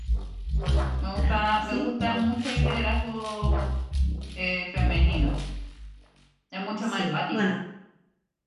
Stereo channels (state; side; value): identical; both; correlation 1.00